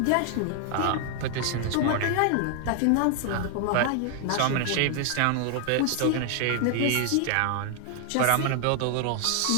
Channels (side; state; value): both; different; correlation 0.00